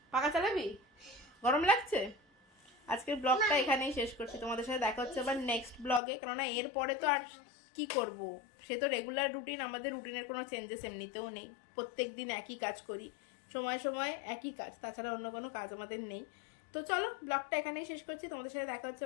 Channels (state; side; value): drops out; right; at 6.0 s